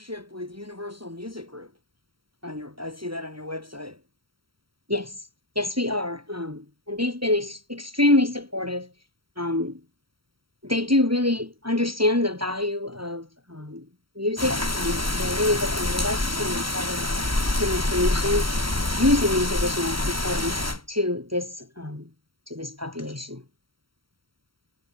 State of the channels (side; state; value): left; late; 0.74 ms